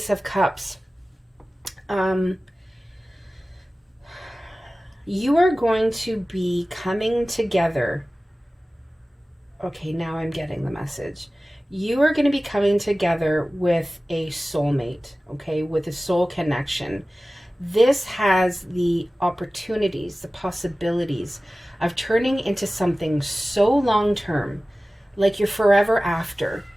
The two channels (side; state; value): both; normal; correlation 0.97